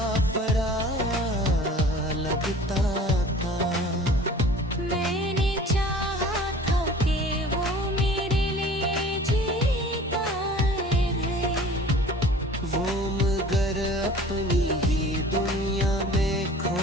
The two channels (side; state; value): both; normal; correlation 0.45